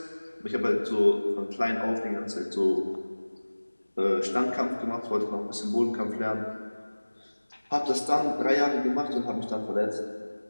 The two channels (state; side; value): inverted; both; correlation -1.00